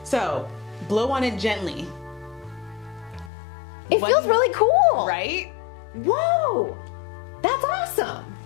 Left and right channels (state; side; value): drops out; right; at 3.3 s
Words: So, blow on it gently. It feels really cool. Right? Whoa. That's awesome.